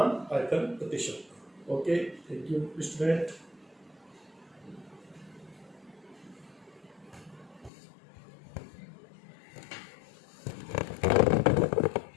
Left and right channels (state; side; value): drops out; right; at 7.7 s